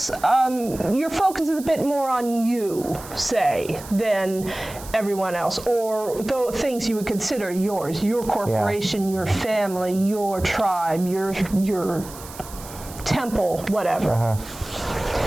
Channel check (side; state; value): right; noise; hiss, 16 dB below the sound